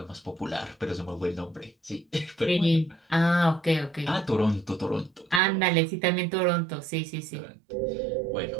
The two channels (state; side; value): drops out; left; at 5.4 s